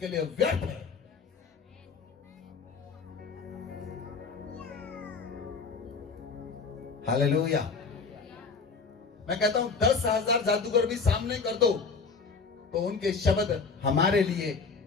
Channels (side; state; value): right; quieter; 4.8 dB